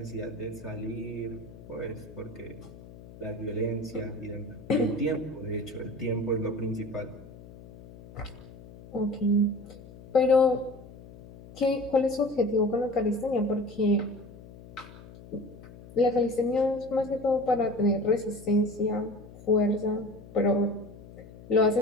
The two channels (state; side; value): noise; left; hum, 18 dB below the sound